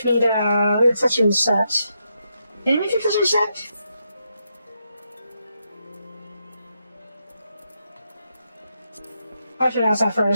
me the accessory set. Can you make the accessory set? I'll ask that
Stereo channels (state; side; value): inverted; both; correlation -0.82